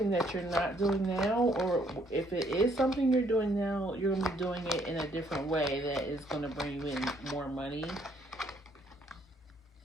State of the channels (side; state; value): both; normal; correlation 0.67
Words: that you're not doing now, or if it is something you're doing now, you're going to be doing it in a different way that is going to bring you in more money.